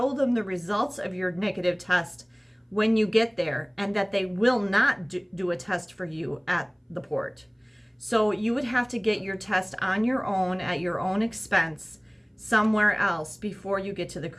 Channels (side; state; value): both; identical; correlation 1.00